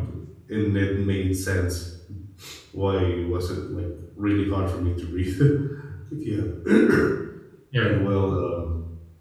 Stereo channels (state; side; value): identical; both; correlation 1.00